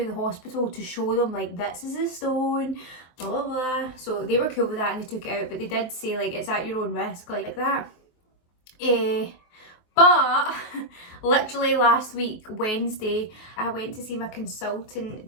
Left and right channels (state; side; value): late; right; 23 ms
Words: the hospital to show them, like, this is a stone, blah blah blah. So they were cool with that and they took it out, but they did say, like, it's at your own risk, like that. But literally last week, Wednesday, I went to see my